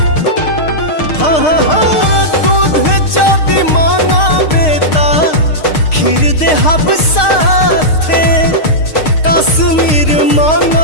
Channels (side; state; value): right; late; 6.5 ms